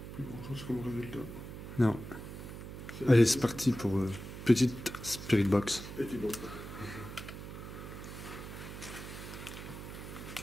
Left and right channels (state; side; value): noise; right; hum, 10 dB below the sound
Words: Plus grand chose comme résultat. Non. Allez, c'est parti pour petite Spirit Box. Et Thibaut.